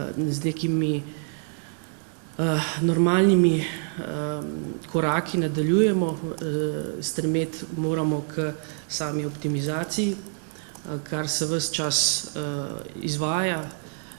nekimi normalnimi koraki nadaljujemo, stremeti moramo k sami optimizaciji, kar se ves čas izvaja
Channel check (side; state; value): left; silent; 61 dB below the other